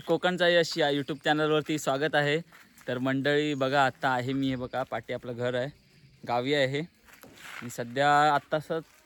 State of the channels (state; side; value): identical; both; correlation 1.00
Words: कोकणचा यश या यूट्यूब चॅनलवरती स्वागत आहे. तर मंडळी बघा, आत्ता आहे मी, हे बघा पाठी आपलं घर आहे, गावी आहे आणि सध्या आत्ताच